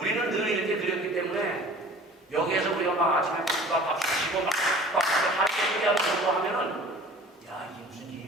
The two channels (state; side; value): normal; both; correlation 0.45